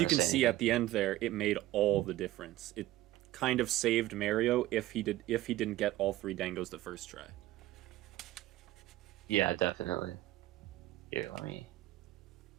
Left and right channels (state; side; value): quieter; left; 15.6 dB